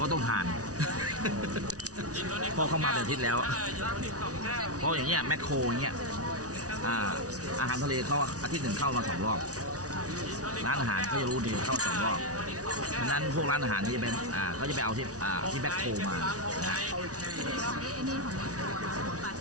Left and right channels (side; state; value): left; late; 0.67 ms